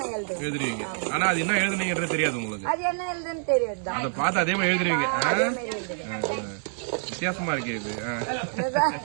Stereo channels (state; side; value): silent; left; digital silence